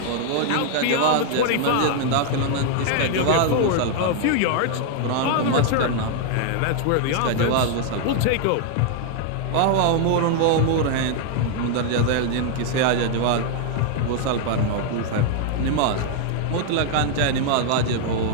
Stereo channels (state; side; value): different; both; correlation 0.00